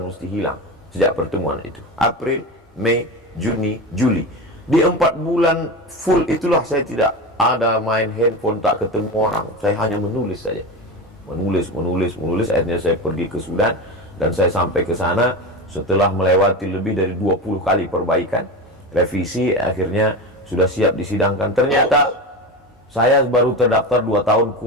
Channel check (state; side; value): normal; both; correlation 0.23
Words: mesti hilang sejak pertemuan itu. April, Mei, Juni, Juli. Di 4 bulan full itulah saya tidak ada main handphone, tak ketemu orang. Saya hanya menulis saja. Menulis. Akhirnya saya pergi ke Sudan dan saya sampai ke sana setelah melewati lebih dari 20 kali perbaikan, revisi, akhirnya sudah siap disidangkan. Ternyata saya baru terdaftar 2 tahun